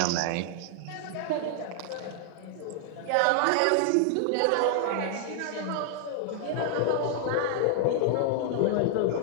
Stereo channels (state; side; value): different; both; correlation -0.01